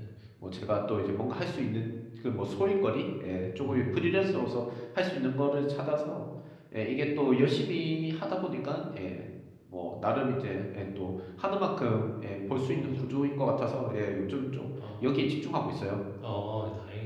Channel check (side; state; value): both; identical; correlation 1.00